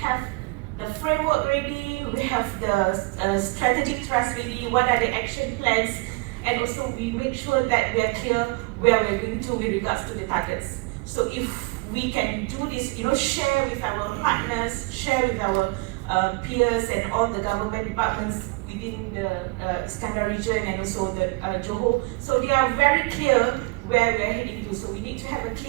the framework ready, we have the strategic trust ready, what are the action plans, and also we make sure that we are clear where we're going to with regards to the targets. So if we can do this, share with our partners, share with our peers and all the government departments within the Iskandar region and also the Johor. So they are very clear where we're heading to. So we need to have a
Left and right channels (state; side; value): quieter; left; 26.2 dB